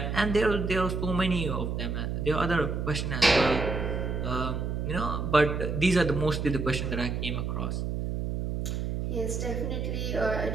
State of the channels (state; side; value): noise; right; hum, 2 dB below the sound